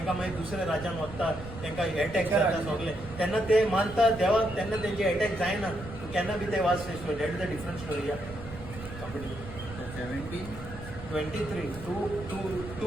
मागीर दुसऱ्या राज्यान वता, तांकां अटॅक जाता सगळे. तेन्ना ते मानता देवाक, तेन्ना तेंचे अटॅक जायना. केन्ना बी ते watch story. That is the different story. या 23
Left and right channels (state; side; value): noise; right; rumble, 12 dB below the sound